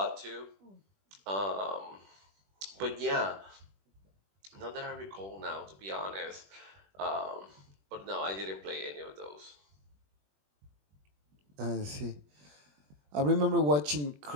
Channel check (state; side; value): late; left; 21 ms